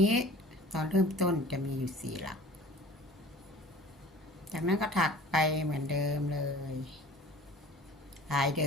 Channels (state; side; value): normal; both; correlation 0.44